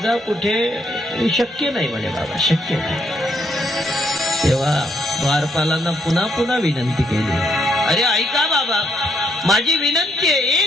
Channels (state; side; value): normal; both; correlation 0.73